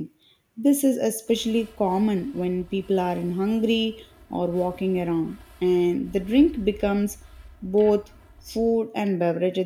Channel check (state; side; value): identical; both; correlation 1.00